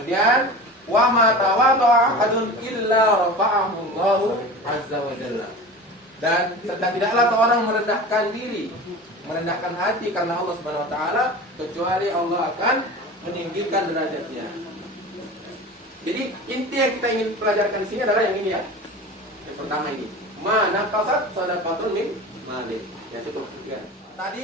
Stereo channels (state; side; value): normal; both; correlation 0.34